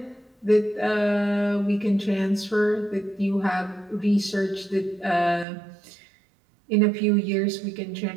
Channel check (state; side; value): drops out; left; at 5.5 s